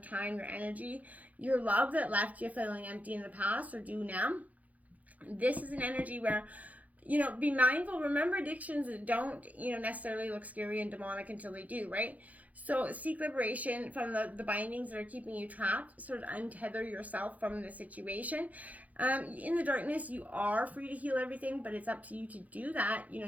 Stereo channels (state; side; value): late; left; 0.075 ms